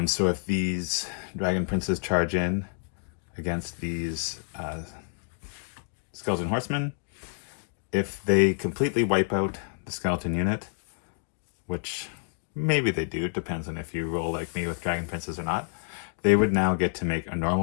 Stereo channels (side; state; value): right; silent; 59 dB below the other